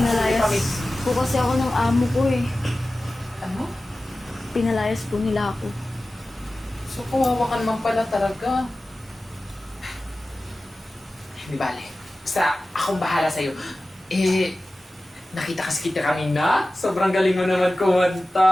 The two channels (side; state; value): both; normal; correlation 0.96